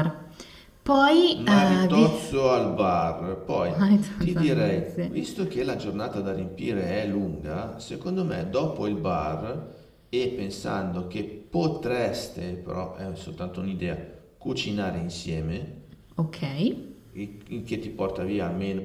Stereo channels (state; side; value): identical; both; correlation 1.00